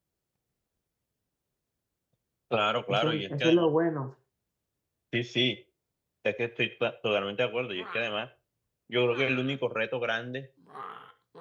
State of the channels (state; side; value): identical; both; correlation 1.00